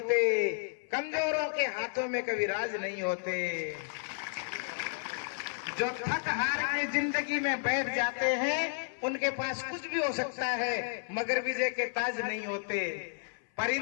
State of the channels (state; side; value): silent; right; 56 dB below the other